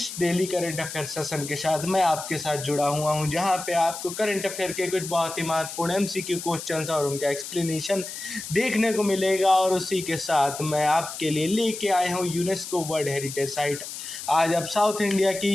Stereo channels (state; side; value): noise; left; hiss, 9 dB below the sound